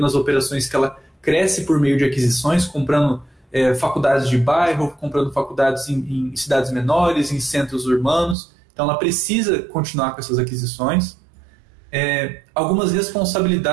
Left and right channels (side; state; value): left; drops out; at 8.3 s